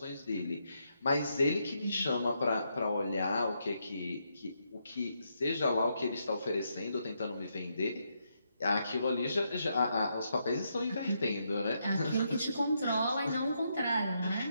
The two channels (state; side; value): inverted; both; correlation -0.80